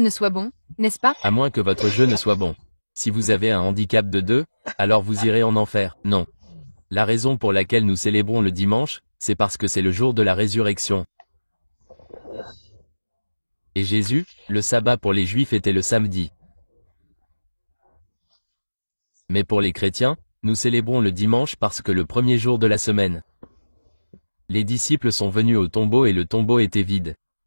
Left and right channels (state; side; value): inverted; both; correlation -1.00